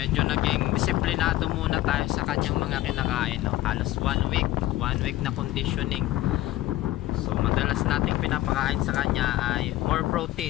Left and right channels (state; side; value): quieter; right; 15.7 dB